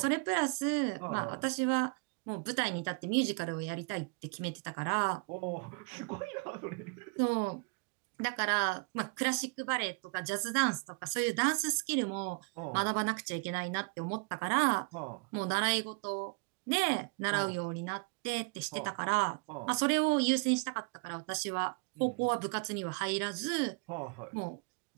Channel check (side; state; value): left; quieter; 34.2 dB